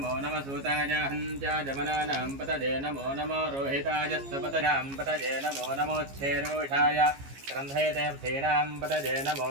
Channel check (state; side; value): late; left; 15 ms